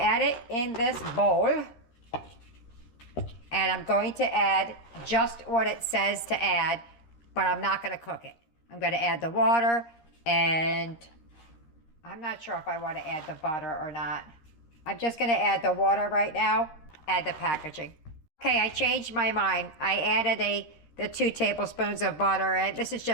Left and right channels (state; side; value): late; right; 13 ms